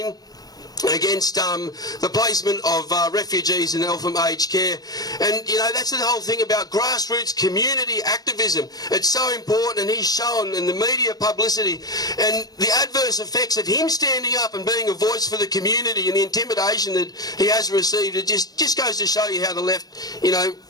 against the placement of refugees in Eltham aged care. And, you know, that's the whole thing about grassroots community activism. It's so important, and he's shown in the media publicity and the adverse effects of him standing up and being a voice for the community and the intimidation that he has received. It just goes to show you how the left, you know,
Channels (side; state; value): right; late; 0.19 ms